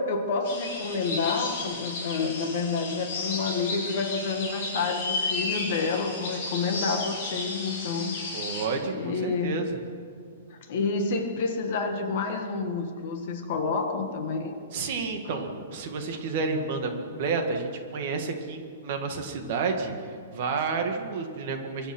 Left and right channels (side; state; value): both; inverted; correlation -0.34